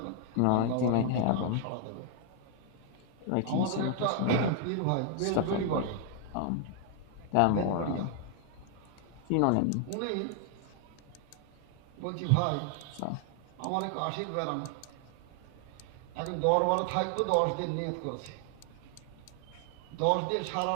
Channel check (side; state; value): both; different; correlation 0.00